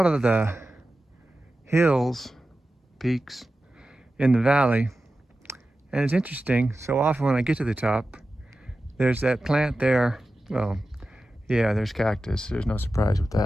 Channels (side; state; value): both; normal; correlation 0.93